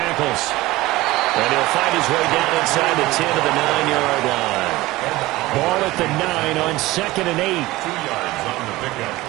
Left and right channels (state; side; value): quieter; left; 18.9 dB